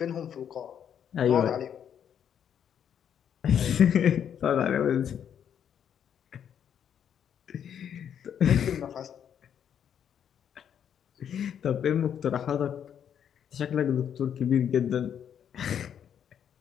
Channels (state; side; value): quieter; right; 8.8 dB